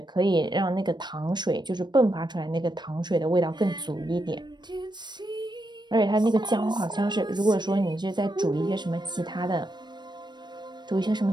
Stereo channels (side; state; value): left; late; 0.21 ms